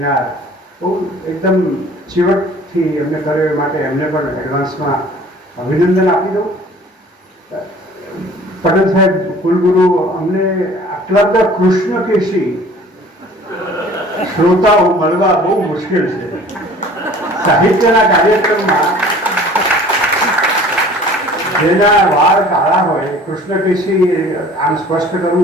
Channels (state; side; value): normal; both; correlation 0.48